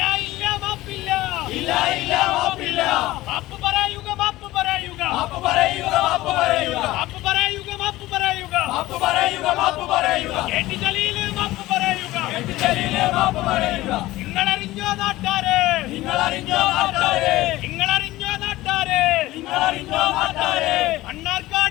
ഇല്ല മാപ്പില്ല, ഇല്ല ഇല്ല മാപ്പില്ല. മാപ്പ് പറയുക, മാപ്പ് പറയുക, മാപ്പ് പറയുക, മാപ്പ് പറയുക, മാപ്പ് പറയുക, മാപ്പ് പറയുക, മാപ്പ് പറയുക, മാപ്പ് പറയുക. KT ജലീൽ മാപ്പ് പറയുക, KT ജലീൽ മാപ്പ് പറയുക. നിങ്ങളറിഞ്ഞോ നാട്ടാരെ, നിങ്ങളറിഞ്ഞോ നാട്ടാരെ, നിങ്ങളറിഞ്ഞോ നാട്ടാരെ, നിങ്ങളറിഞ്ഞോ നാട്ടാരെ.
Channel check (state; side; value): quieter; right; 17.4 dB